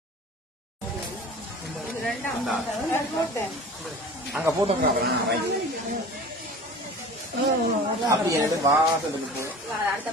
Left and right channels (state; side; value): normal; both; correlation 0.40